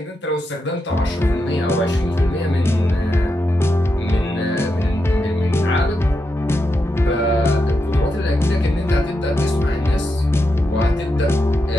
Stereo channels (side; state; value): both; normal; correlation 0.86